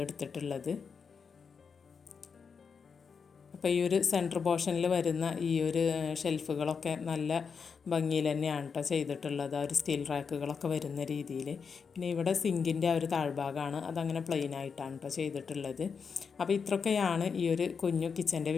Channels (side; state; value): right; quieter; 5.9 dB